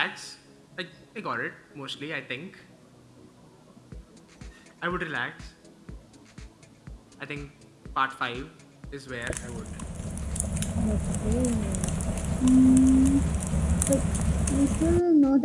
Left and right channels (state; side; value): identical; both; correlation 1.00